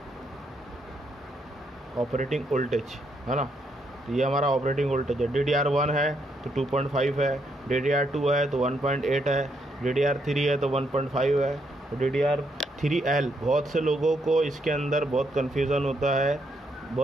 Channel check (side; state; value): both; normal; correlation 0.76